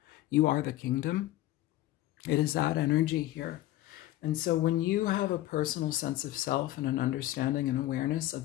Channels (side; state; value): right; quieter; 15.5 dB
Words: You are the kingdom. It is that energy here. And so when you have a personal sense of self and an understanding and awareness